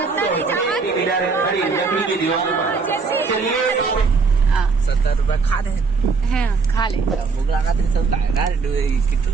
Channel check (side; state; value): left; quieter; 4.7 dB